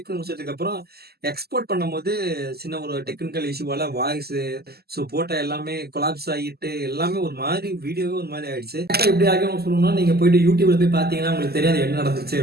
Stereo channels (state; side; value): late; left; 0.46 ms